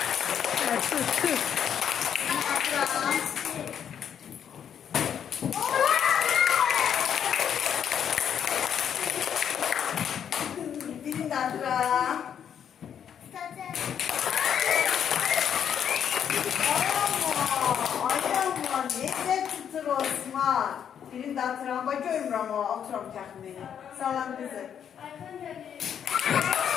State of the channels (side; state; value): right; quieter; 8.6 dB